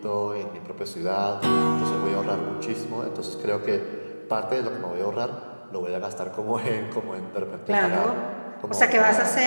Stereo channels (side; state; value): both; inverted; correlation -1.00